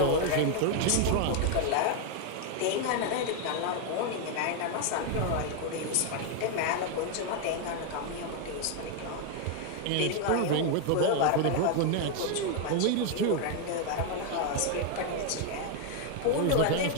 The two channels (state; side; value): different; both; correlation 0.01